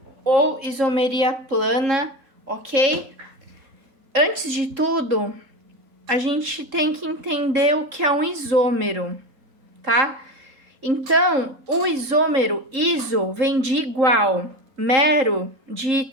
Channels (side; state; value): left; late; 3.7 ms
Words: ou isomeria plana, ok? Antes de tudo, a gente tem que entender o que é um isômero, tá? Então, o isômero, iso, vem de igual, mero, de